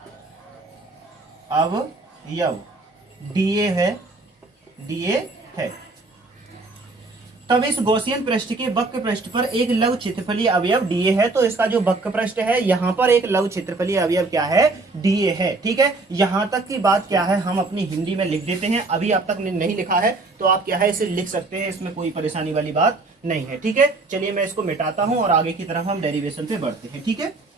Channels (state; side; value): quieter; left; 3.4 dB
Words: डीए है। तब इस गॉसियन पृष्ठ के वक्र पृष्ठ पर एक लघु क्षेत्रफलीय अवयव डीए है। तो इसका जो वक्र पृष्ठ है यहाँ पर एक लघु क्षेत्रफलीय अवयव क्या है? डीए है। ठीक है, यहां तक की बात क्या है हम अपनी हिंदी में लिख देते हैं। अभी आप तक नहीं लिखा है तो आप क्या है इसे लिख सकते हैं, इसमें कोई परेशानी वाली बात नहीं है। ठीक है, चलिए मैं इसको मिटाता हूं और आगे की तरफ हम डेरिवेशन पे बढ़ते हैं। ठीक है,